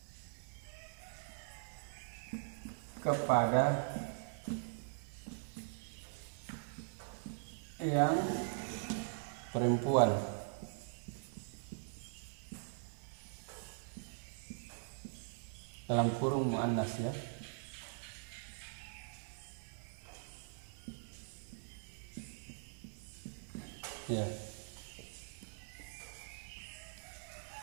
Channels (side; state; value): left; silent; digital silence